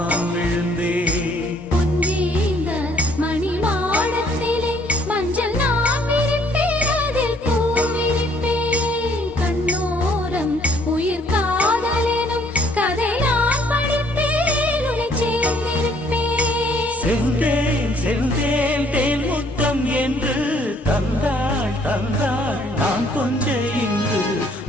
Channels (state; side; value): normal; both; correlation 0.62